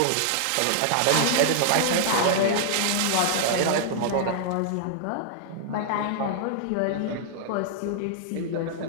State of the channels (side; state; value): both; different; correlation -0.01